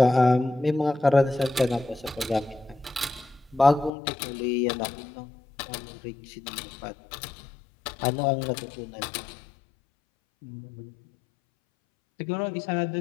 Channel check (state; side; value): drops out; right; at 3.9 s